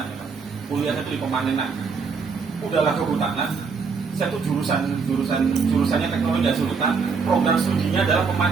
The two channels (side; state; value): left; quieter; 5.2 dB